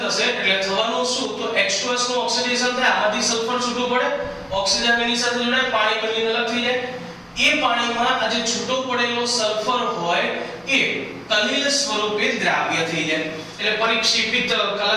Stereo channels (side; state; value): both; identical; correlation 1.00